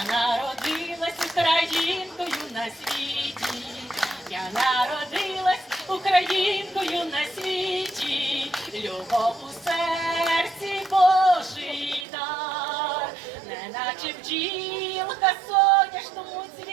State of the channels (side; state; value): left; drops out; at 12.1 s